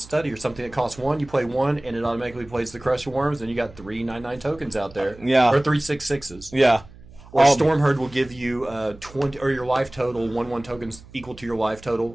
or something that costs 1. You play 1, and it automatically plays the Crush of Worms, and you got 3 9/9 tokens out there. Yeah. Or 3 6/6s. Yeah. Or Stormherd will give you 20, or your life total 1/1 tokens equal to your life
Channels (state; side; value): noise; right; hum, 21 dB below the sound